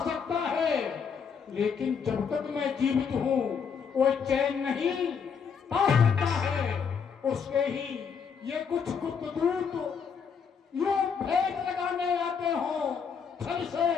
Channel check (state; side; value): quieter; right; 6.4 dB